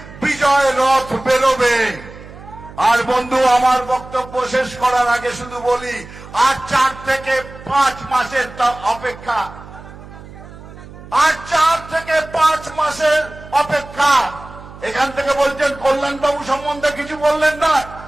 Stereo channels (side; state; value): right; noise; hum, 17 dB below the sound